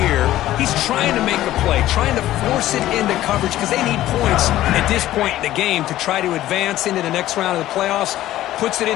year. He's trying to make a play, trying to force it into coverage because they need points at this point in the game to try to advance into the next round of the playoffs. Puts it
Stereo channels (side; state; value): right; quieter; 14.3 dB